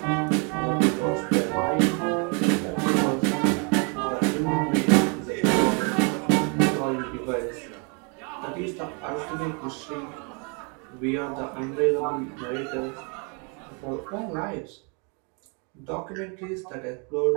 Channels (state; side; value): quieter; left; 35.2 dB